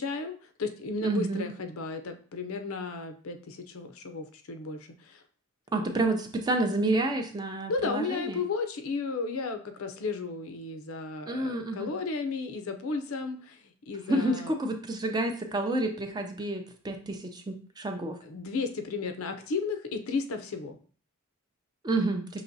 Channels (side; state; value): both; normal; correlation 0.41